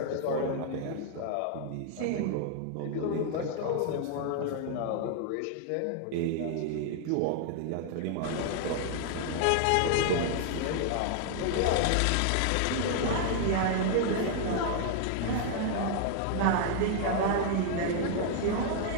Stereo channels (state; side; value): different; both; correlation 0.00